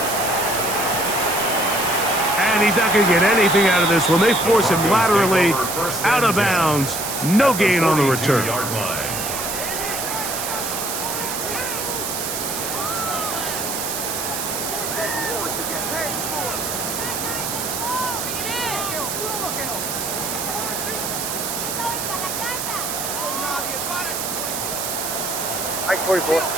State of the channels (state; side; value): noise; right; hiss, 3 dB below the sound